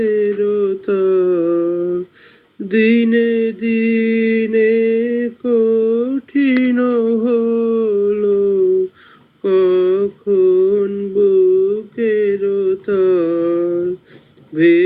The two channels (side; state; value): both; identical; correlation 1.00